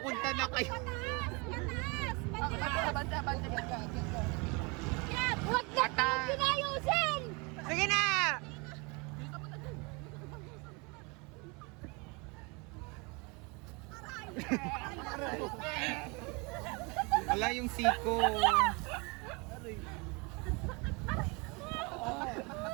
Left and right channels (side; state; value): left; quieter; 29.1 dB